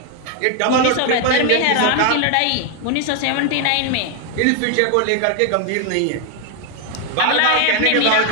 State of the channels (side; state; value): both; different; correlation 0.00